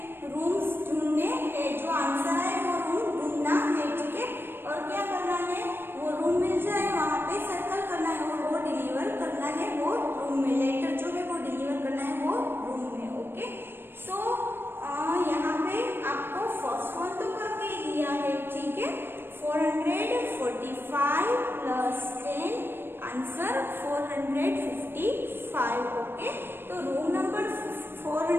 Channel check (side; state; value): left; late; 0.10 ms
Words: रूम्स ढूंढने हैं, जो आंसर है वो रूम ढूंढना है. ठीक है, और क्या करना है, वो रूम मिल जाए वहां पे सर्कल करना है और वो डिलीवर करना है वो रूम में. लेटर जो है वो डिलीवर करना है वो रूम में. ओके, सो यहाँ पे आपको फर्स्ट वन तो करके दिया है. ठीक है, 445 प्लस 10 आंसर 455. ओके, तो रूम नंबर